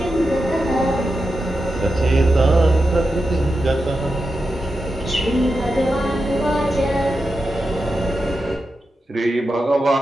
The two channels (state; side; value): normal; both; correlation 0.89